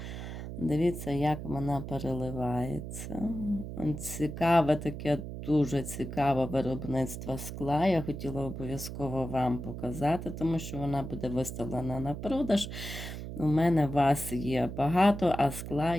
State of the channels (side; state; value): right; noise; hum, 8 dB below the sound